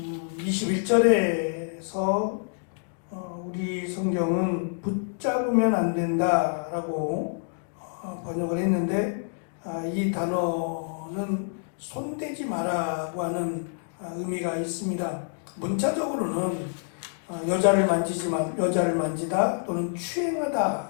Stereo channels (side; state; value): right; silent; digital silence